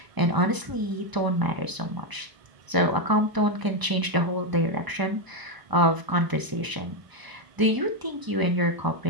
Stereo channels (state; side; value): late; left; 1.0 ms